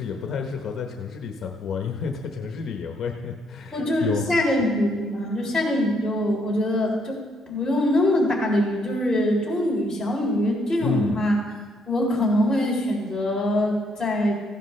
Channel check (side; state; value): both; normal; correlation 0.72